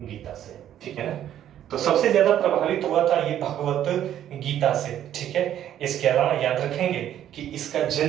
ठीक है ना। तो सबसे ज्यादा प्रभावित हुआ था ये भगवत गीता से, ठीक है। इसके अलावा याद रखेंगे कि इसका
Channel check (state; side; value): quieter; left; 11.1 dB